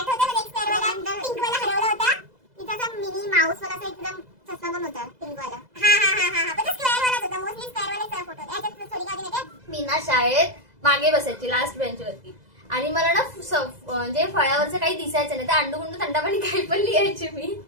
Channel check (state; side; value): late; left; 2.0 ms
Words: मला, एक स्क्वेअर वाला पिंक वाला हरवला होता. तिचा असा मिनी माऊस वाला एकदम चष्मा पण होता पिंक वाला. हा पण तो स्क्वेअर वालाच होता. मोस्टली स्क्वेअर वालाच फोटो. याच्यात थोडी काढली नाही. मी ना शाळेत मागे बसायची, लास्ट बेंचवरती. आणि मला ना म्हणजे फळ्यावरचं काही दिसायचं नाही. तर अंडूगुंडू थंडापाणी काही पण लिहायची मी.